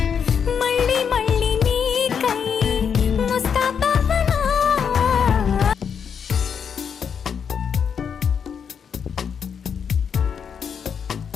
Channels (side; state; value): right; quieter; 7.1 dB